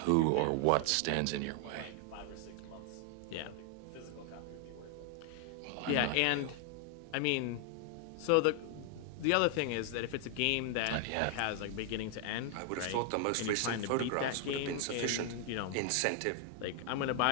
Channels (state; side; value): different; both; correlation 0.00